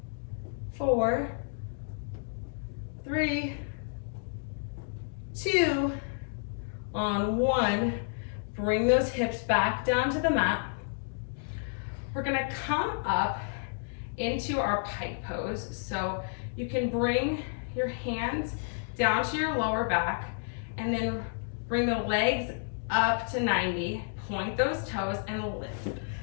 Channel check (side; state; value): right; silent; digital silence